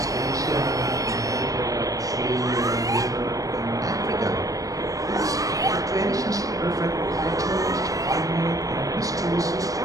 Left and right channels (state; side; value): late; left; 0.17 ms